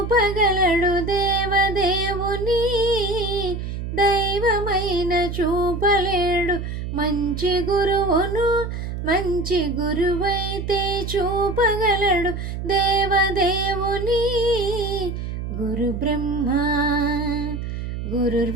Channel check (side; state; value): right; noise; hum, 5 dB below the sound